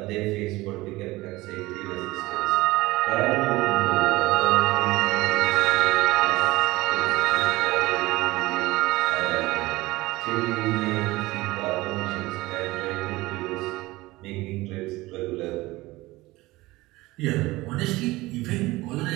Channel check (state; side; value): quieter; left; 19.8 dB